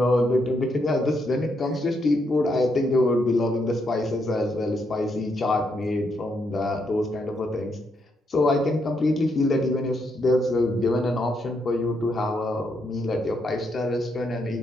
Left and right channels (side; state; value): both; normal; correlation 0.78